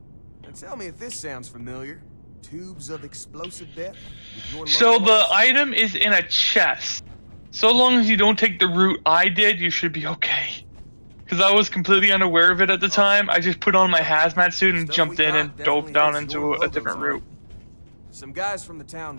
Now tell me if this sounds familiar. Tubes of explosive death? So the item is in a chest. So long as you don't take the route I did, you should be okay. Because I was completely unaware of it at the time. I just put on my hazmat suit and jumped in and dove down into a different route. Some guys from the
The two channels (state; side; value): inverted; both; correlation -1.00